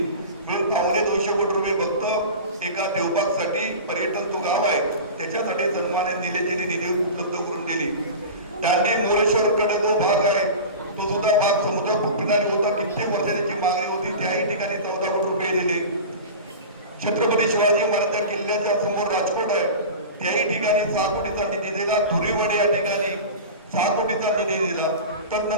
मिळून 250 कोटी रुपये फक्त एका देवबागसाठी पर्यटन तो गाव आहे त्याच्यासाठी सन्मानित निलेशजींनी निधी उपलब्ध करून दिली. दांडी मोरेश्वर कडे जो भाग आहे तो सुद्धा भाग समुद्र किनारी होता. कित्येक वर्षाची मागणी होती, त्याही ठिकाणी 14 कोटी रुपये दिले. छत्रपती शिवाजी महाराज किल्ल्याच्या समोर राजकोट आहे त्याही ठिकाणी 6 कोटीचा निधी दिला. धुरीवडे या ठिकाणी 6 कोटीचा निधी दिला.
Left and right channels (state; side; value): inverted; both; correlation -0.31